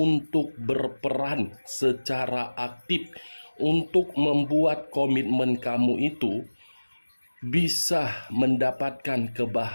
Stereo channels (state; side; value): inverted; both; correlation -1.00